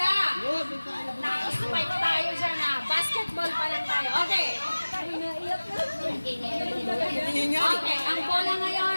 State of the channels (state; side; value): inverted; both; correlation -1.00